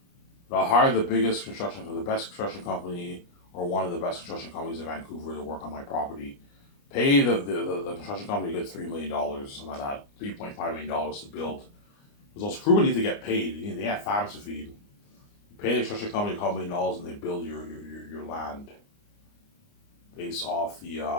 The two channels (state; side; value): late; right; 29 ms